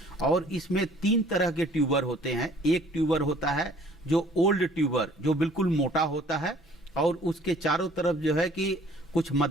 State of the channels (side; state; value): both; normal; correlation 0.55